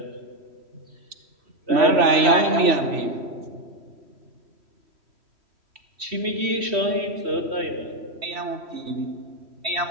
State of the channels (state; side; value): late; left; 3.1 ms